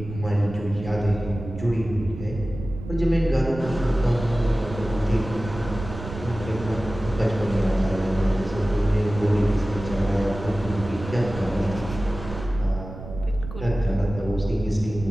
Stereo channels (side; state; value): right; noise; rumble, 11 dB below the sound